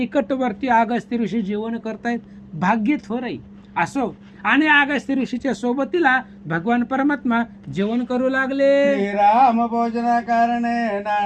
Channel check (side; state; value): both; identical; correlation 1.00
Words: अगस्ती ऋषी जेवण करतायत. भाग्य थोर आहे. असो. आणि अगस्त्य ऋषीच्या सोबतीला भगवान परमात्मा जेवण करू लागले. श्रीराम भोजना कारणे